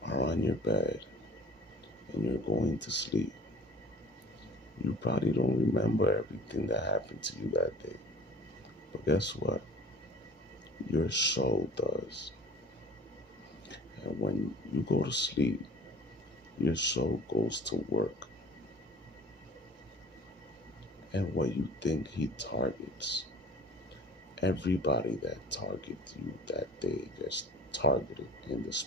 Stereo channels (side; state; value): both; normal; correlation 0.45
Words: are on your bed and you're going to sleep, you probably don't remember everything that happened to you that day. But guess what? Your soul does. And when you go to sleep, your soul goes to work. And what you think he targets, everybody that targets you that day gets targeted in the